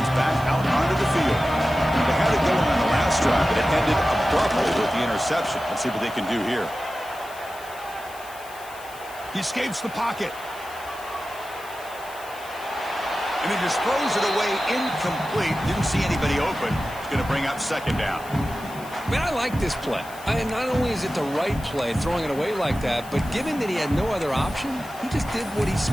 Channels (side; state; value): left; noise; hiss, 19 dB below the sound